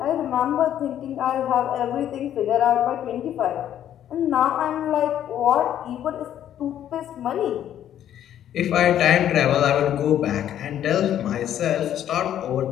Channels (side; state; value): right; quieter; 10.8 dB